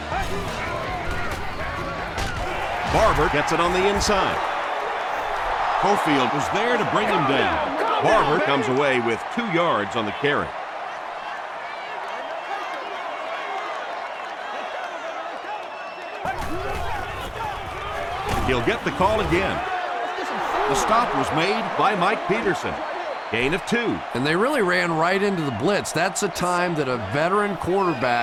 Barber gets it on the inside. Cofield was there to bring him down. Barber comes away with 2 yards on the carry. He'll get the call again. The stop was made by Mike Peterson. Gain of 2. And they really ran right into the blitz. That's a time that a veteran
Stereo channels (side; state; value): both; identical; correlation 1.00